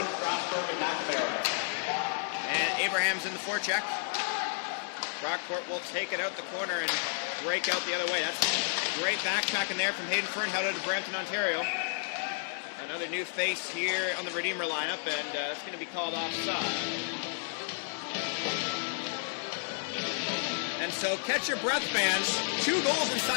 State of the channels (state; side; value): silent; right; digital silence